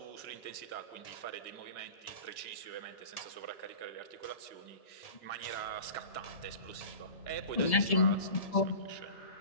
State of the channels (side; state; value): right; late; 1.7 ms